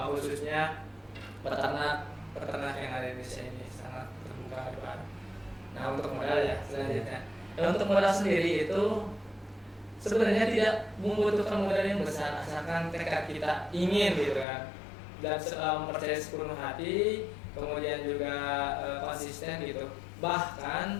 khususnya peternak yang ada di Indonesia ini sangat terbuka lebar. Nah, untuk modal ya selanjutnya. Dan untuk modal sendiri itu sebenarnya tidak membutuhkan modal yang besar, asalkan tekad kita ingin gitu kan, dan mempercayai sepenuh hati, kemudian juga konsisten gitu.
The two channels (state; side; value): drops out; right; at 14.5 s